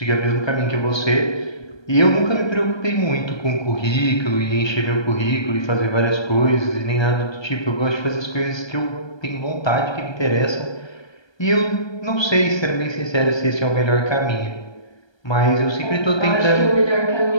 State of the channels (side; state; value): right; late; 1.3 ms